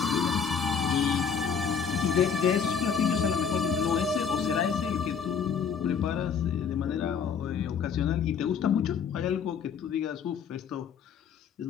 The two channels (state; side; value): quieter; right; 6.7 dB